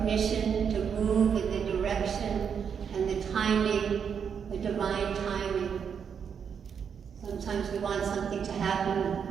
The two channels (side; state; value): left; quieter; 7.2 dB